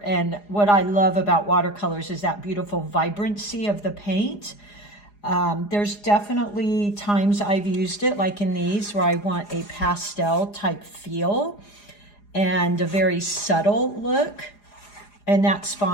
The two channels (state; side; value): late; right; 4.9 ms